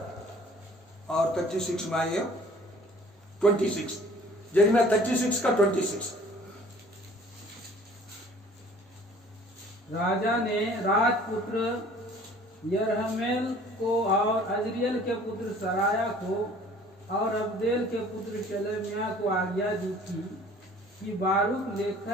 और 36 में आइए 26, जर्मिया 36 का 26। राजा ने राजपुत्र यरहमेल को और अजरियल के पुत्र सराया को और अब्देल के पुत्र शलेमिया को आज्ञा दी थी कि बारूक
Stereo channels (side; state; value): both; normal; correlation 0.52